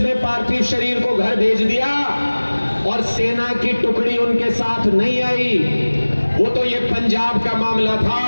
पार्थिव शरीर को घर भेज दिया और सेना की टुकड़ी उनके साथ नहीं आई। वो तो ये पंजाब का मामला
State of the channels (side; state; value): both; inverted; correlation -1.00